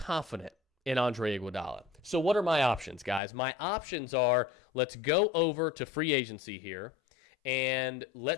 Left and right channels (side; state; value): right; drops out; at 3.2 s